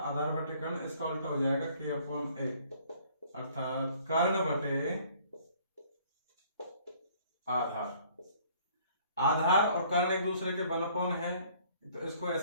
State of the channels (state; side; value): inverted; both; correlation -0.58